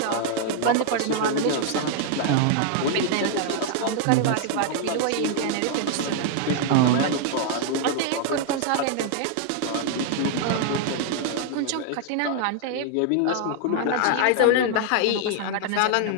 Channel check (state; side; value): different; both; correlation -0.01